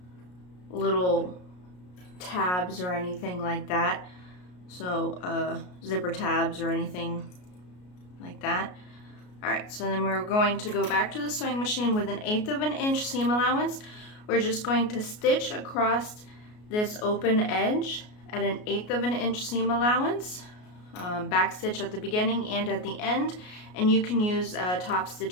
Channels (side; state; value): right; late; 33 ms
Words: little tabs or anything like that. So zipper tabs or anything like that. All right, so then we're going to go back to the sewing machine with 1/8 of an inch seam allowance. We're just going to stitch across this open edge at 1/8 of an inch seam allowance, back stitch at the beginning and at the end, and you can use top